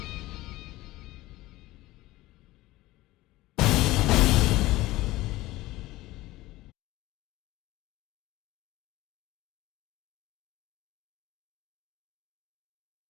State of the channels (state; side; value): quieter; right; 18.0 dB